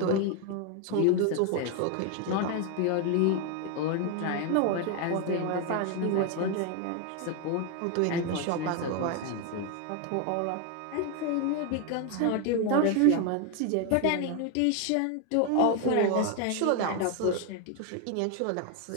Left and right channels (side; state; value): both; different; correlation 0.01